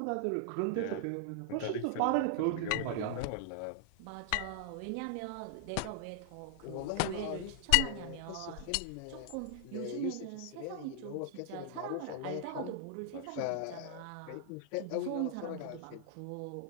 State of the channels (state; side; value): different; both; correlation 0.00